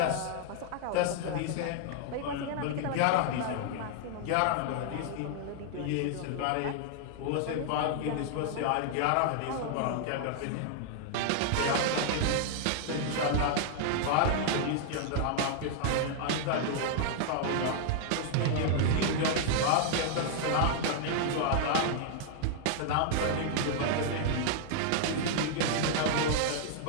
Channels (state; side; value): different; both; correlation 0.00